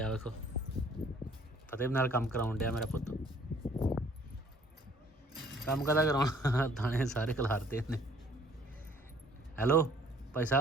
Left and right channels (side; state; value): both; normal; correlation 0.58